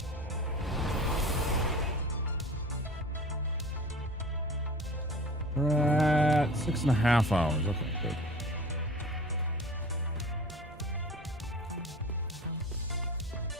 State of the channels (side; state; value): both; normal; correlation 0.40